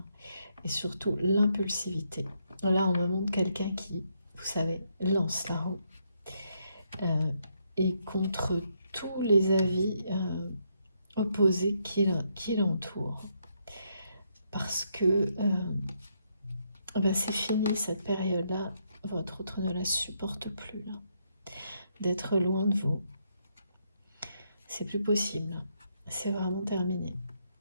Et surtout, l'impulsivité. Là, on me montre quelqu'un qui, vous savez, lance la roue. Et contre tous les avis opposés qui l'entourent. Parce que ben c'est fini cette période-là. Votre autre ne la supporte plus, là. D'être loin de vous. C'est plus possible. C'est vraiment terminé.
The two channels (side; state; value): both; inverted; correlation -0.76